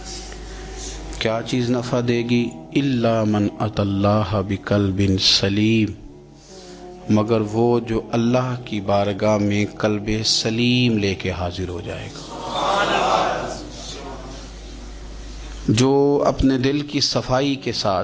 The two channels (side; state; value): both; identical; correlation 1.00